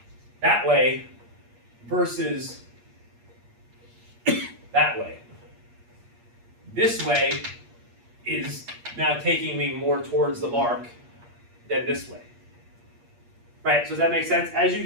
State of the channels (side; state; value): left; late; 8.5 ms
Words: that way versus that way. This way is now taking me more towards the mark than this way. Right, so does that make sense? As you